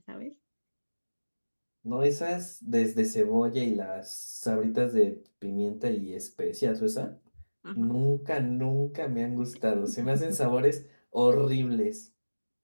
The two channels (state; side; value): inverted; both; correlation -1.00